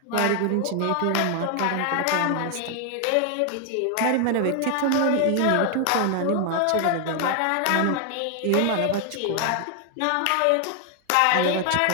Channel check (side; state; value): both; different; correlation 0.00